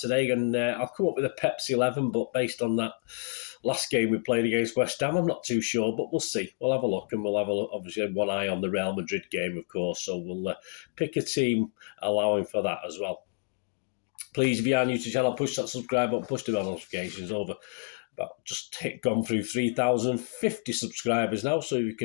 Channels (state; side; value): silent; right; 59 dB below the other